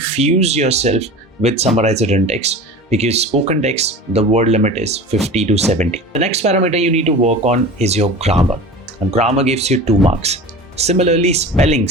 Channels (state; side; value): normal; both; correlation 0.35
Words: yourself with summarized written text, because spoken text, the word limit is 50 to 70. The next parameter you need to work on is your grammar. And grammar gives you 2 marks. Similarly,